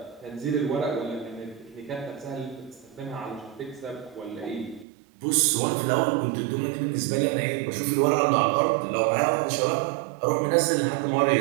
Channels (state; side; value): drops out; left; at 4.9 s